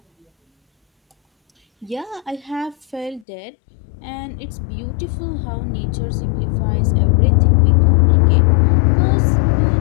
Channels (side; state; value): right; drops out; at 3.2 s